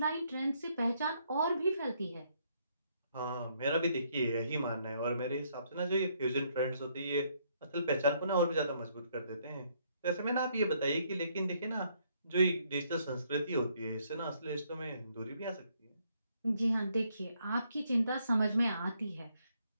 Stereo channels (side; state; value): both; inverted; correlation -0.70